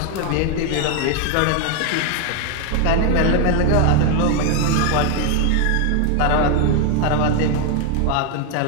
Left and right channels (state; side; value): different; both; correlation 0.01